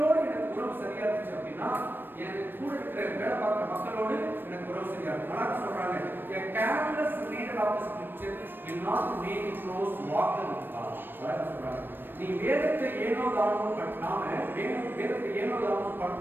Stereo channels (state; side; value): late; left; 0.095 ms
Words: எனக்கு உறவு சரியா இருந்துச்சு அப்படின்னா எனக்கு கூட இருக்கிற வேலை பார்க்குற மக்களோடு எனக்கு உறவு சரியா இருக்கும். நல்லா சொல்றாங்க, a careless reader of the scripture will not make a close walker with God. அதான் சொல்றாங்க, நீ வேதத்தை ஏனோ தானோ வேதத்தை ஏனோ தானோ